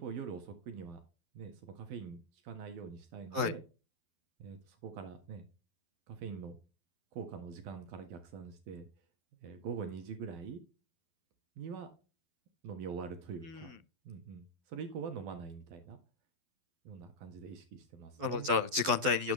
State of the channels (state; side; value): late; left; 12 ms